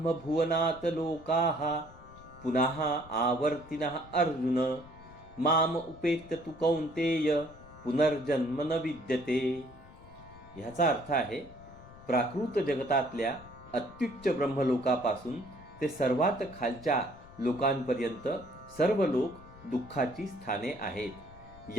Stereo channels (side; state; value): left; noise; rumble, 20 dB below the sound